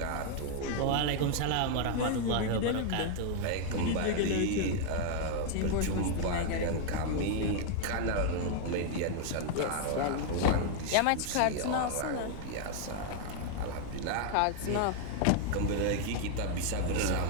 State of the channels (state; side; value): different; both; correlation 0.00